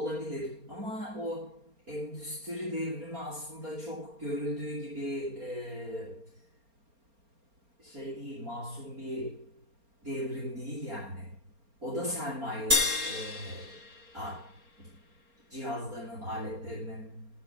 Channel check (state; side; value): late; left; 4.3 ms